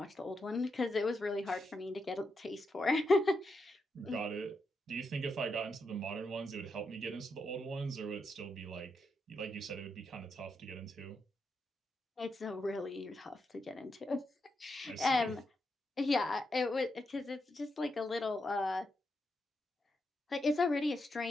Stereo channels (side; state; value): both; normal; correlation 0.84